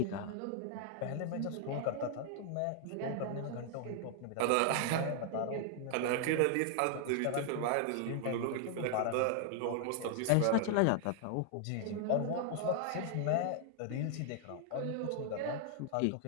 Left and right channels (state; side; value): different; both; correlation 0.00